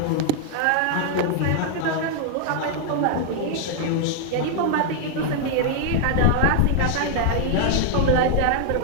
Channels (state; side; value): different; both; correlation 0.00